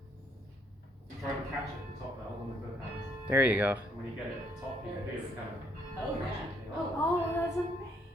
Try and catch it at the top there, hold on with both hands. There you go. And when you get it at the top, you can feel it kind of. Oh, yeah. Oh, that's amazing.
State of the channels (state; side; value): normal; both; correlation 0.69